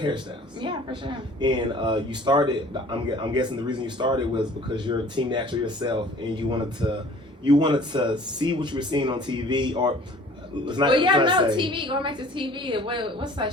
Yeah, for sure. And you started. I'm guessing the reason you started was because you're a Team Natural yourself, and you wanted to see what you were seeing on TV, or let's not. Well, yeah, no, say. TV. Going back to TV, what's that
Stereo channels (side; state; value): both; normal; correlation 0.49